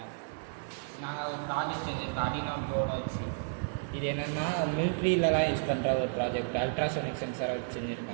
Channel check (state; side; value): silent; left; digital silence